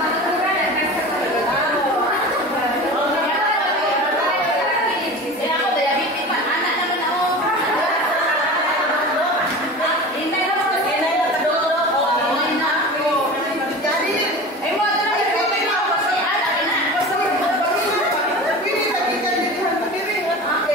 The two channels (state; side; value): normal; both; correlation 0.33